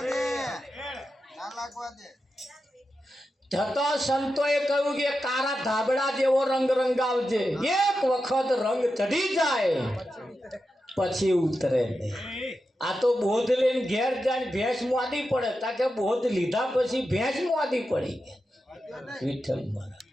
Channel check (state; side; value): normal; both; correlation 0.89